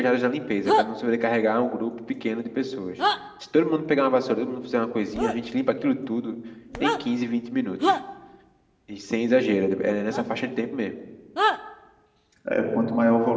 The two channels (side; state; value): both; identical; correlation 1.00